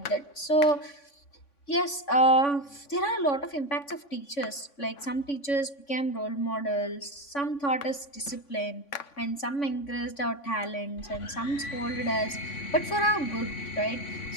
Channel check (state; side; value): late; right; 3.5 ms